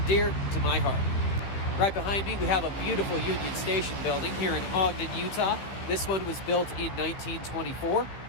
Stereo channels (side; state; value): right; late; 15 ms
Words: dear to my heart. Right behind me we have a beautiful Union Station building here in Ogden, Utah. This one was built in 1924.